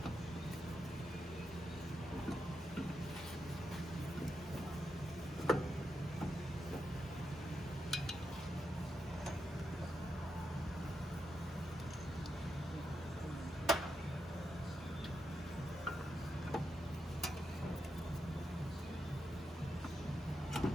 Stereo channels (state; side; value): normal; both; correlation 0.85